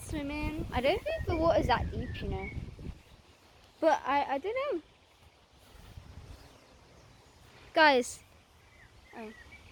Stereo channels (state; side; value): identical; both; correlation 1.00